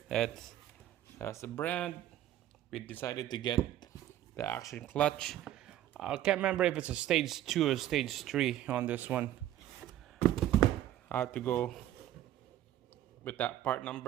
that's the brand. We decided to get the action clutch. I can't remember if it's a stage 2 or stage 3 on this one. I have to go with that part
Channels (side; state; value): left; quieter; 12.8 dB